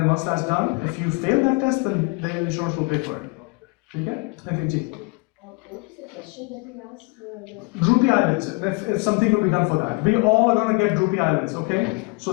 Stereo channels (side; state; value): right; quieter; 29.1 dB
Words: once that's done, if you fail that test, then the insurance will pay for it. Okay? Thank you. What is the question that we asked? Droopy eyelids, if something will be done for that. We all are going to get droopy eyelids, okay? So